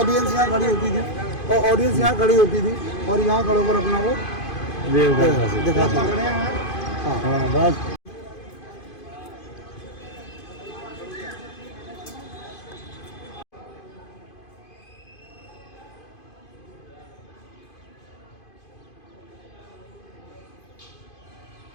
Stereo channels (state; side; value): late; right; 2.5 ms